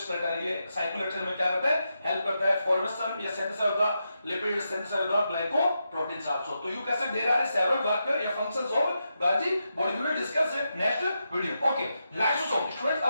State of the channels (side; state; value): both; inverted; correlation -0.86